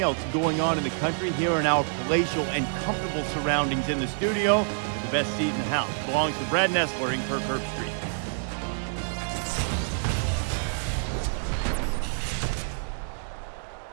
else going on in the country here in our palatial and comfortable surroundings in the studio. The best seat in the house belongs to Brad Nessler in Kirk Street.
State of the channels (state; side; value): silent; left; 60 dB below the other